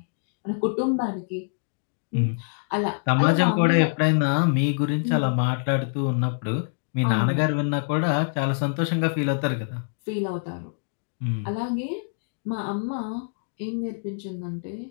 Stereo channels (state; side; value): silent; right; digital silence